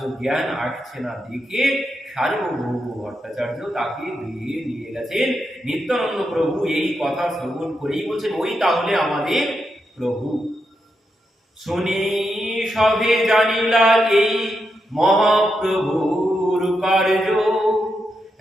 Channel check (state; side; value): normal; both; correlation 0.84